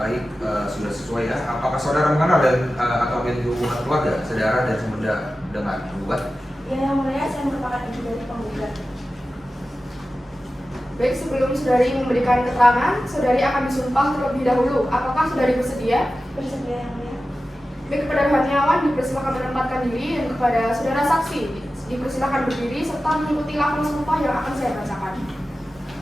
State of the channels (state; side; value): normal; both; correlation 0.94